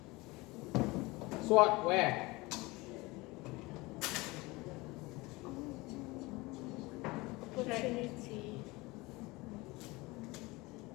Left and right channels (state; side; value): quieter; right; 22.7 dB